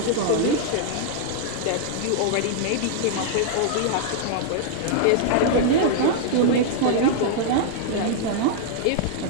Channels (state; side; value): different; both; correlation -0.01